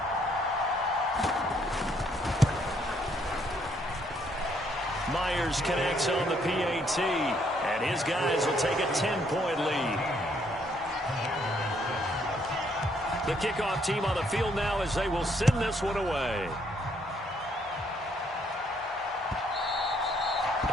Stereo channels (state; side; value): normal; both; correlation 0.69